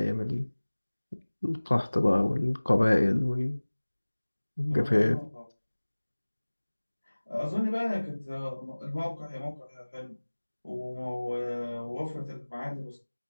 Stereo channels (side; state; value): both; inverted; correlation -1.00